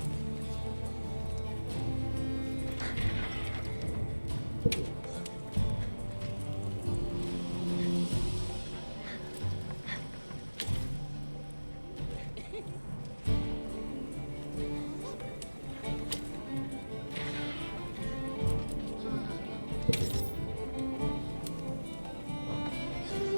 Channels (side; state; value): both; inverted; correlation -1.00